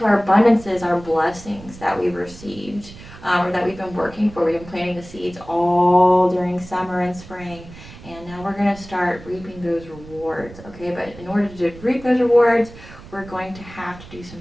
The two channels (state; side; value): noise; right; rumble, 18 dB below the sound